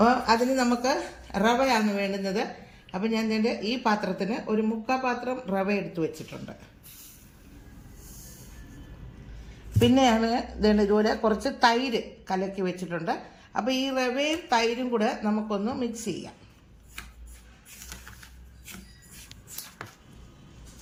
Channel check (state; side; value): identical; both; correlation 1.00